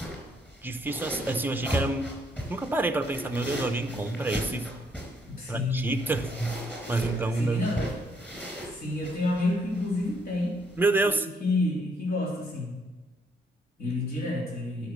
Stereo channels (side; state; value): both; normal; correlation 0.70